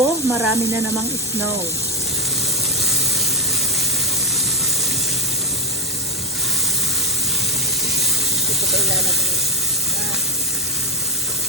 marami na namang snow. Ito pa ilalagay.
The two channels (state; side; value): normal; both; correlation 0.10